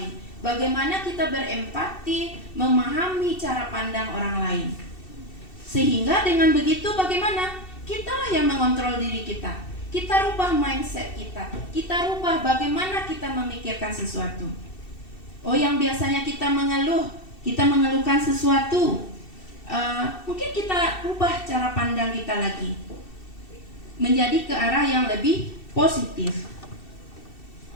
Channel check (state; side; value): late; right; 2.7 ms